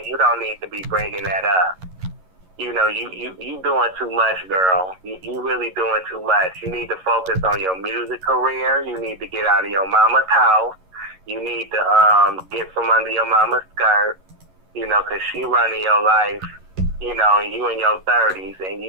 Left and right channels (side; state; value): left; late; 11 ms